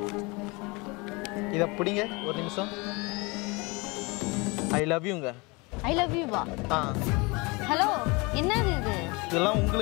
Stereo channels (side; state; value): right; quieter; 26.7 dB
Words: இத பிடிங்க ஒரு நிமிஷம். ஐ லவ் யூங்க. ஐ லவ் யூ வா. ஹலோ, என்னது இது? இதெல்லாம்